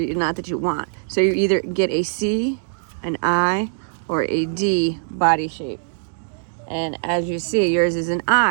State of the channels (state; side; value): silent; left; digital silence